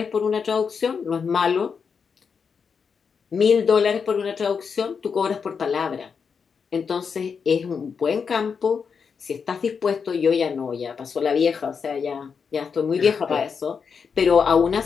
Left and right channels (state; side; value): quieter; right; 6.0 dB